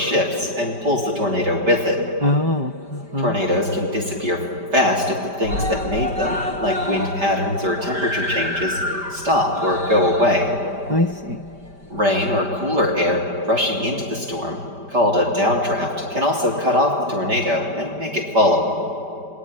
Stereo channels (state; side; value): late; left; 5.1 ms